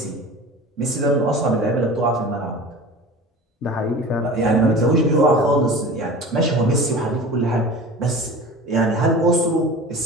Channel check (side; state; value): both; normal; correlation 0.37